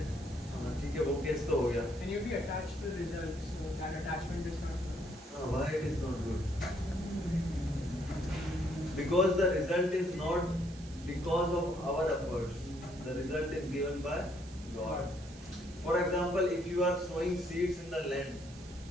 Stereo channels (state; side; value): noise; right; hiss, 20 dB below the sound